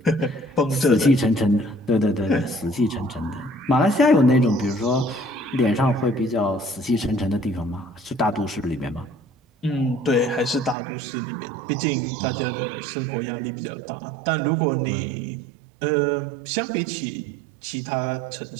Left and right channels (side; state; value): left; drops out; at 10.8 s